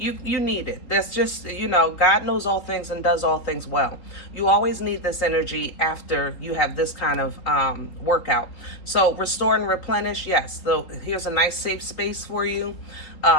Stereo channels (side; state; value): right; late; 3.7 ms